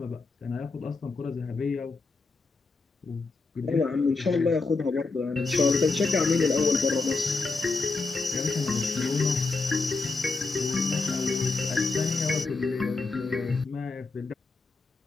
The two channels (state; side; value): quieter; right; 3.7 dB